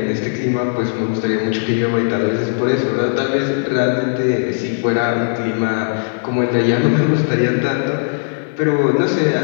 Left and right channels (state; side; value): silent; right; digital silence